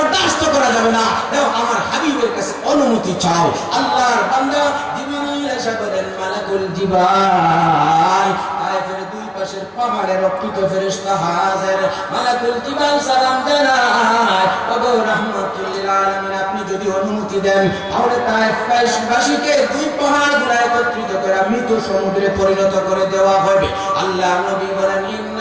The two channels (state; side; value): identical; both; correlation 1.00